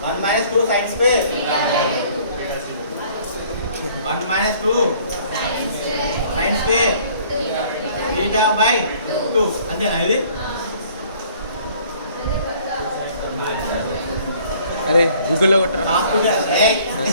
2 sin square. 1 minus 2 sin square. Theta by 2. అంతేనా ఇది? అరే గూగుల్లో కొట్టరా.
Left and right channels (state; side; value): inverted; both; correlation -0.56